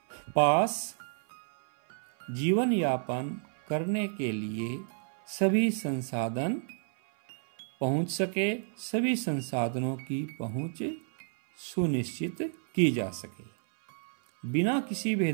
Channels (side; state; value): left; silent; 57 dB below the other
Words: पास जीवन यापन करने के लिए सभी संसाधन पहुंच सके, सभी संसाधनों की पहुंच सुनिश्चित की जा सके, बिना किसी